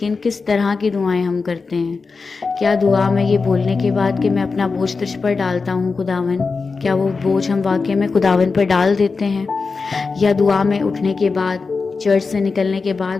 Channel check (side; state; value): right; quieter; 4.5 dB